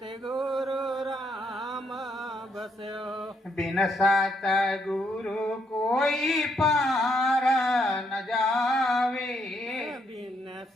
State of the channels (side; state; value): both; normal; correlation 0.74